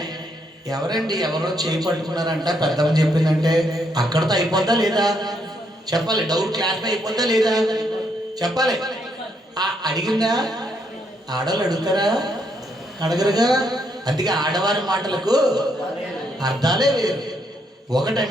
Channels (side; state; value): both; normal; correlation 0.75